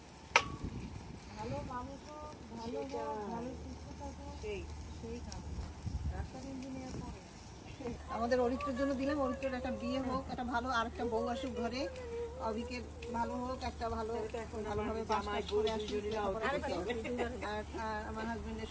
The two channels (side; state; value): both; identical; correlation 1.00